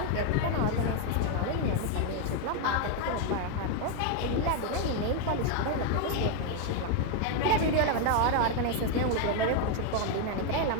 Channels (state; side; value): different; both; correlation 0.01